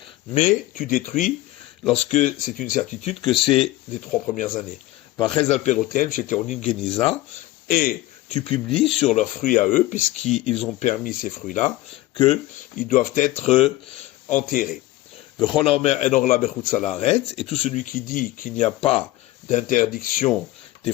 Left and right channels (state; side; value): quieter; right; 17.1 dB